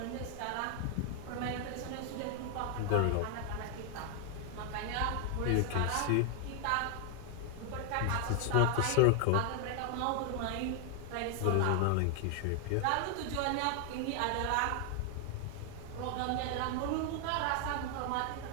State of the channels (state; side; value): different; both; correlation 0.00